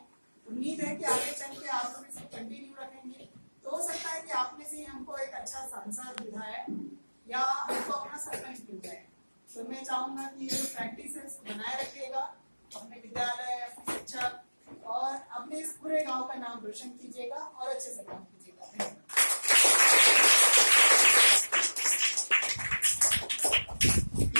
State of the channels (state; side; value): inverted; both; correlation -1.00